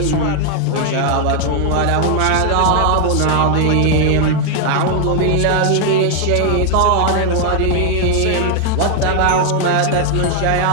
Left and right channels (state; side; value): different; both; correlation 0.00